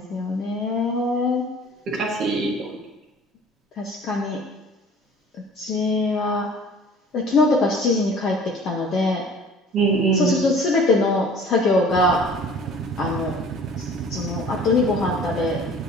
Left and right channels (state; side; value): normal; both; correlation 0.48